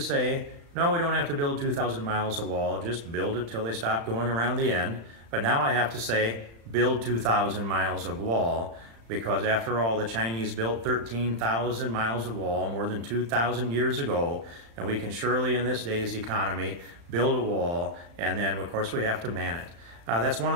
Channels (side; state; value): left; late; 35 ms